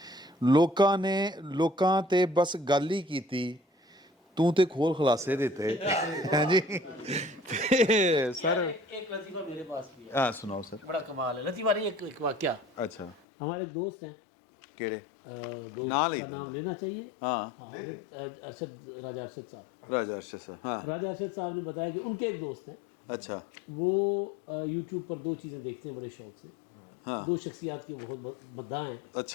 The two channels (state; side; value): drops out; right; at 13.2 s